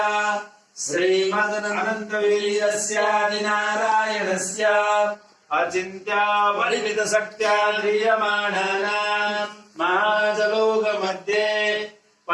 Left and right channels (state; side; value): identical; both; correlation 1.00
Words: श्रीमदनन्तवीर्यस्यादिनारायणस्य अचिन्त्या परिमित शक्त्या ध्रियमाणानाम् महाजलोकमध्ये